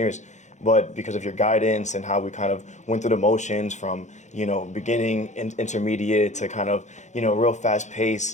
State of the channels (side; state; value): right; late; 0.34 ms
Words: But because of your guidance and how we kind of went through the motions from, beginning, intermediate to kind of, real fast